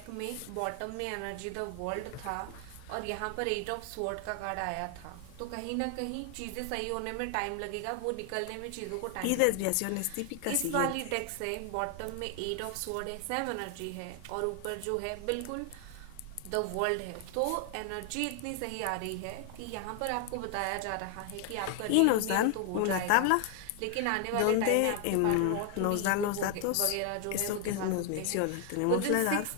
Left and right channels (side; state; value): both; different; correlation 0.00